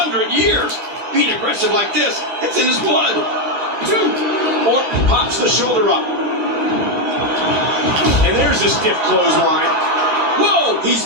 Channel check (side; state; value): left; late; 13 ms